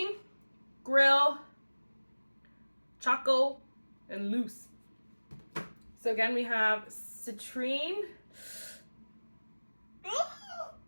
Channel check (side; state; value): both; inverted; correlation -1.00